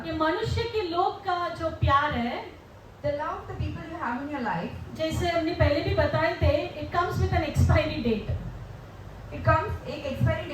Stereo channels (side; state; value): both; identical; correlation 1.00